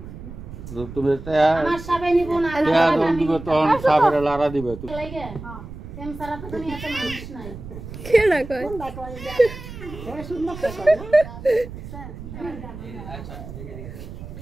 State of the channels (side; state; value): right; noise; rumble, 12 dB below the sound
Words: তুমি আমার সাপে নিব না, তখন সাপের লারা দিবে তুমি তেম সারা তো তুমি এত মানুষ নাই কেডা কয়